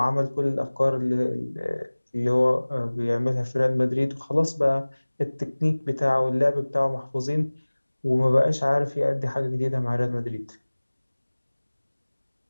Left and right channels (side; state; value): both; inverted; correlation -1.00